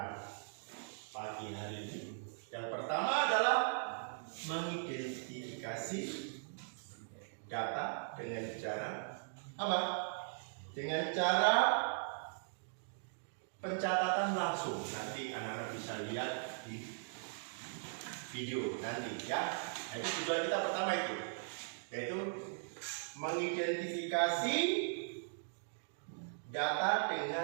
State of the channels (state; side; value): silent; left; digital silence